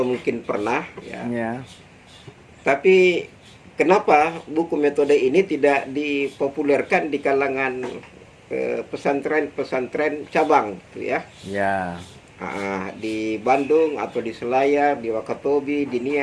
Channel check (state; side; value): identical; both; correlation 1.00